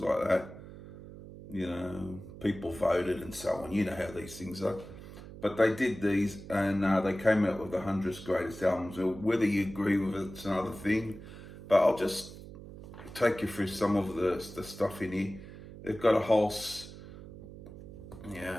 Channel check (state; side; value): noise; right; hum, 14 dB below the sound